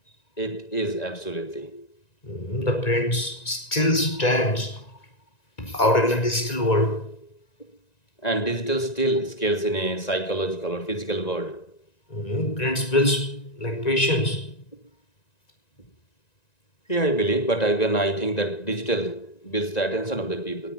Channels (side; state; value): right; late; 1.9 ms